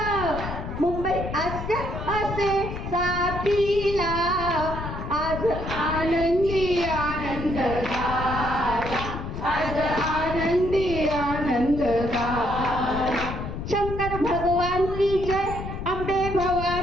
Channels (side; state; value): left; noise; rumble, 7 dB below the sound